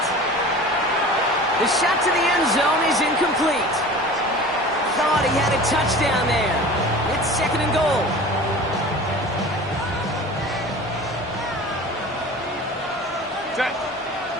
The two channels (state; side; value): normal; both; correlation 0.39